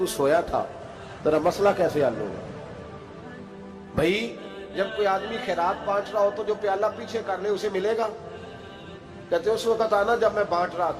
سویا تھا، ذرا مسئلہ کیسے حل ہوگا؟ بھائی جب کوئی آدمی خیرات بانٹ رہا ہو تو جو پیالہ پیچھے کر لے اسے ملے گا؟ کہتے اس وقت آنا جب میں بانٹ رہا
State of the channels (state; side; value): identical; both; correlation 1.00